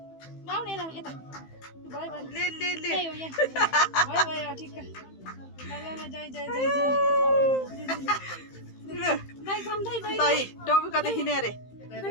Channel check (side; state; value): right; late; 15 ms